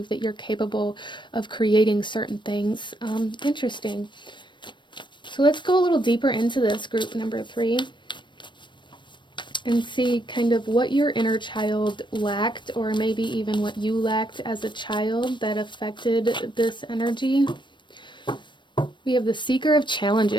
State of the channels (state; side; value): late; right; 0.22 ms